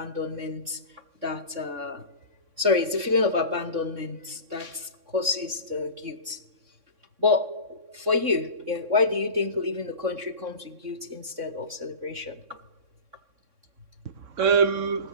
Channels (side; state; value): left; late; 3.6 ms